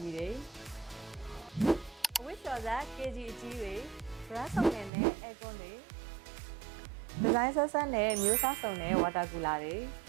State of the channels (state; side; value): drops out; left; at 4.9 s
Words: တွေအဝိကျော်စား KG အကြီးတွေ brand စုံနဲ့ aircon တွေ design ဆက်ဆက်နဲ့မျိုးစားစုံနဲ့ water cooler တွေ